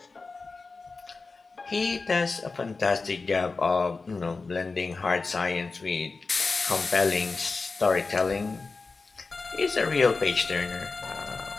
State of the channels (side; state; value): right; quieter; 4.1 dB